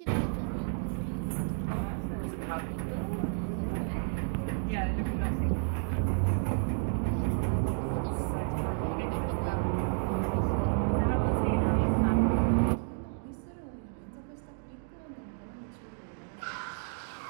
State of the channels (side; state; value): left; silent; 57 dB below the other